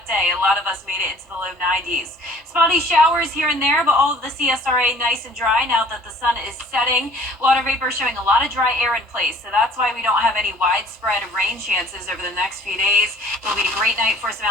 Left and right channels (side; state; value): both; normal; correlation 0.52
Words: day. A lot of us made it into the low 90s. Spotty showers here and there, but all of the CSRA nice and dry now that the sun is setting. Water vapor showing a lot of dry air in place, so that's why we don't have any widespread rain chances over the next few days. It'll be a great night for some